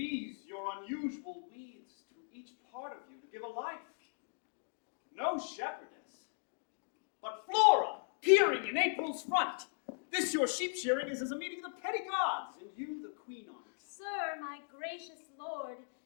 your unusual weeds to each part of you to give a life. No shepherdess, but Flora, peering in April's front. This your sheep shearing is as a meeting of the petty gods, and you the queen on it. Sir, my gracious lord,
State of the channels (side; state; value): right; silent; digital silence